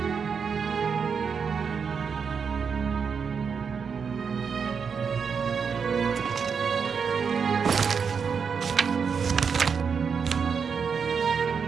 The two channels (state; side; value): quieter; left; 6.2 dB